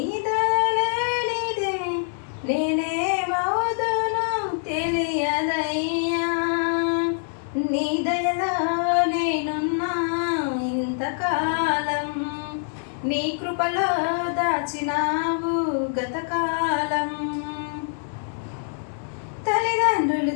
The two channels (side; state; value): right; silent; digital silence